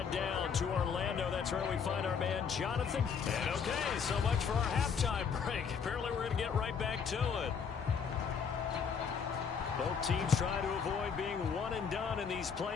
down to Orlando. That's where we find our man Jonathan. And okay, so much for our halftime break. Apparently we're going to get right back to it. Both teams try to avoid being one and done in these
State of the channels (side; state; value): right; quieter; 6.5 dB